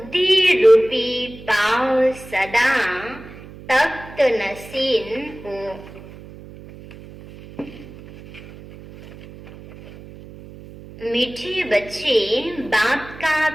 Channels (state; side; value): noise; right; hum, 17 dB below the sound